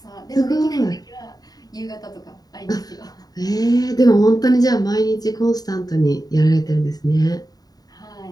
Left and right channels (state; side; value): late; right; 0.18 ms